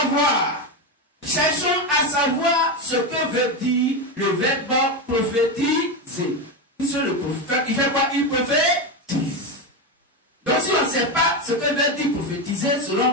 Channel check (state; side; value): normal; both; correlation 0.13